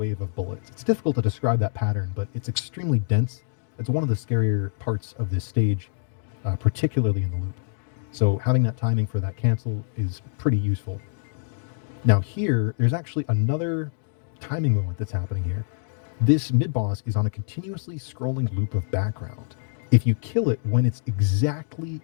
of bullets. It's difficult to describe that pattern, but it's extremely dense. It's one of the scarier parts of this stage, particularly in the loop. So having that timing for that cancel is pretty useful. Now here, there's actually another timing moment that's happening here. This mid-boss is on a continuously scrolling loop of background. If you kill it when it's exactly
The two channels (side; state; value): right; silent; digital silence